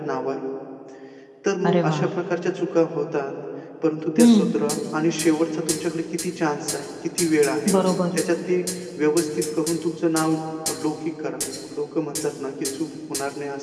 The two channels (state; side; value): identical; both; correlation 1.00